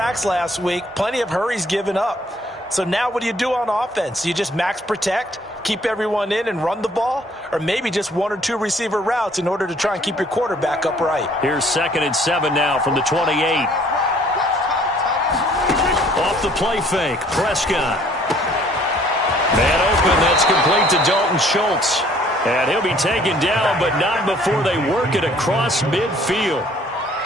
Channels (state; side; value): normal; both; correlation 0.59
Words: last week, plenty of hurries given up. So now what do you do on offense? You just max protect, keep everyone in and run the ball, or maybe just 1 or 2 receiver routes in order to try and keep your quarterback upright. Here's 2nd and 7 now from the 28. Off the play fake, Prescott. Man open, that's complete to Dalton Schultz. And he'll be taken down, but not before they work it across midfield.